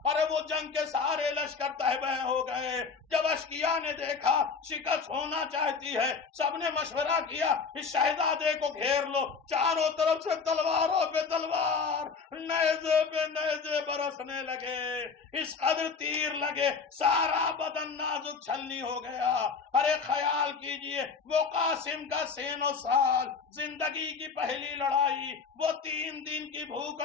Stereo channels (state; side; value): quieter; right; 5.3 dB